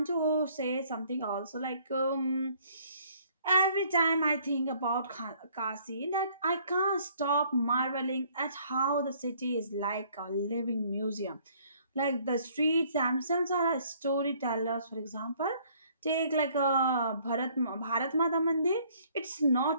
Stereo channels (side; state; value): both; inverted; correlation -0.61